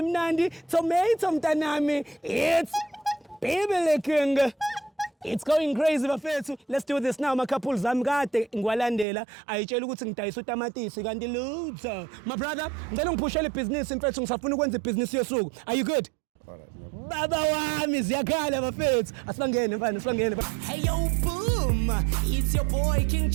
tomato mntanami. It's Beverly King. It's going crazy bafethu. Let's do this now. My couple zami kade ngwalandela ayitshela ukuthi ngidayisa utamatisi kanti lutho. My brother, ngicela ngiphushele business mfethu ngisafuna ukwenza business yesuku. Are you good? Alright. Baba wami ziyakhala bafethu. Asibangene mfana, asibangene. Hey yo boom. It's your boy King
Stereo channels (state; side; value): drops out; left; at 9.1 s